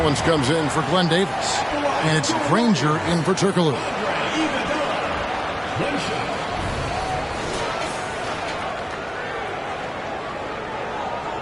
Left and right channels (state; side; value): identical; both; correlation 1.00